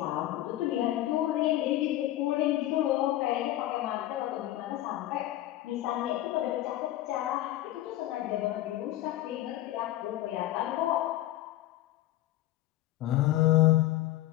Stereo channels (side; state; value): right; quieter; 14.9 dB